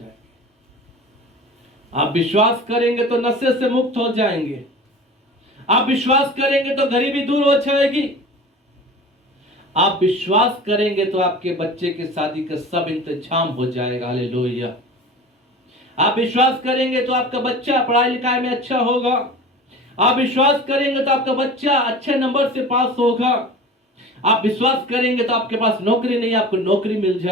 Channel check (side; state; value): both; normal; correlation 0.38